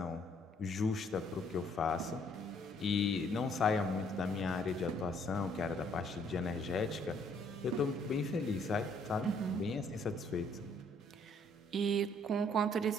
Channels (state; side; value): normal; both; correlation 0.64